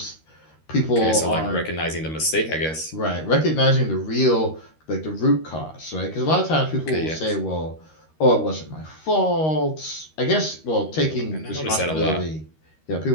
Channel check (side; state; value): right; late; 13 ms